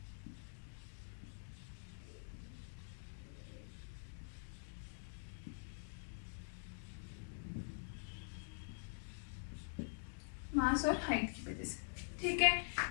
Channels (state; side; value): silent; right; digital silence